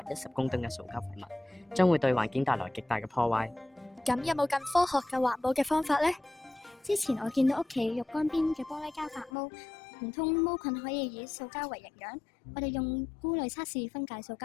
公噸嘅塑膠廢物，將會對環境帶來極大嘅破壞。咁有冇更科學嘅環保嘅方法呢？之前我見到屋企浴缸邊嘅玻璃膠發毛，唔通毛菌可以以塑膠為營養？我哋用菇類測試分解塑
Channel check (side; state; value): right; drops out; at 9.3 s